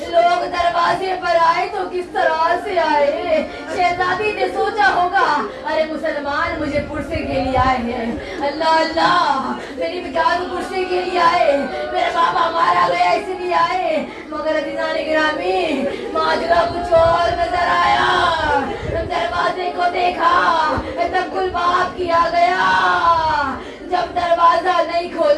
لوگ دروازے پر آئے تو کس طرح سے آئے. شہزادی نے سوچا ہوگا ارے مسلمان مجھے پرسے کے لیے آئے ہیں. اللہ اللہ میری بچار پرسے کے لیے آئے, میرا بابا مارا گیا اس لیے آئے. مگر عزیزان گرامی ماجرا کچھ اور نظر آیا. دروازے کو دیکھا تب گل باب کیا گیا. جب دروازہ نہیں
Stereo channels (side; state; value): both; identical; correlation 1.00